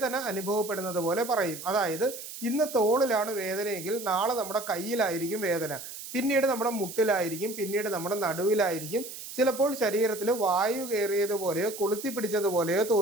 അനുഭവപ്പെടുന്നത് പോലെ പറയും. അതായത് ഇന്ന് തോളിലാണ് വേദനയെങ്കിൽ നാളെ നമ്മുടെ കയ്യിലായിരിക്കും വേദന, പിന്നീട് നമ്മുടെ മുട്ടിലായിരിക്കും, പിന്നീട് നമ്മുടെ നടുവിലായിരിക്കും, ചിലപ്പോൾ ശരീരത്തിൽ വായു കയറിയതുപോലെയോ കൊളുത്തി പിടിച്ചതുപോലെയോ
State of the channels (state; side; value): noise; right; hiss, 11 dB below the sound